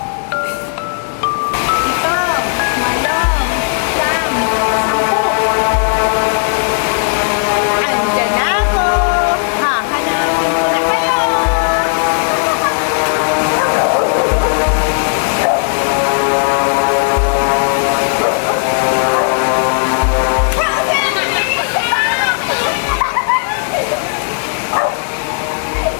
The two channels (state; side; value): silent; right; digital silence